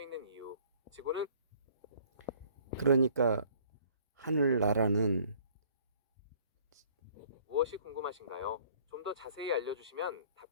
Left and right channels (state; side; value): inverted; both; correlation -0.57